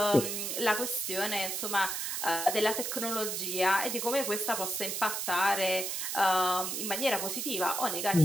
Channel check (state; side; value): noise; right; hiss, 2 dB below the sound